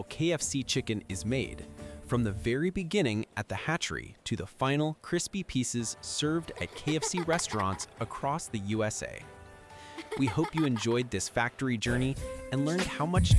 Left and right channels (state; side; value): identical; both; correlation 1.00